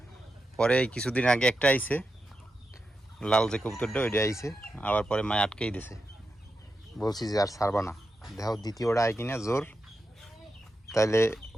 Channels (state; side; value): normal; both; correlation 0.88